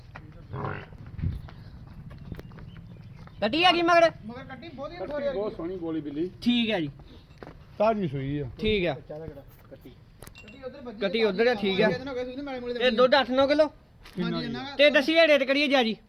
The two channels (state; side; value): identical; both; correlation 1.00